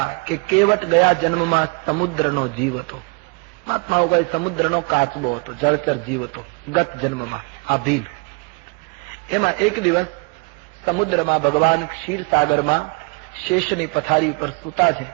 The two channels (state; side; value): quieter; left; 31.5 dB